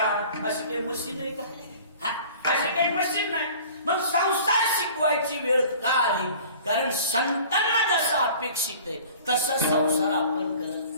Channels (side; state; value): both; inverted; correlation -0.46